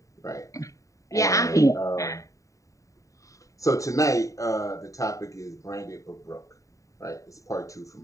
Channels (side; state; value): right; late; 0.16 ms